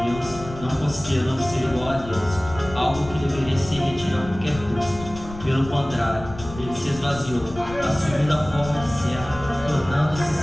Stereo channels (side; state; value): left; noise; rumble, 14 dB below the sound